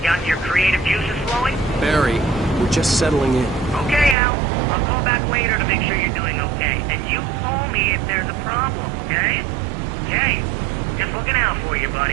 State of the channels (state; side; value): drops out; left; at 4.2 s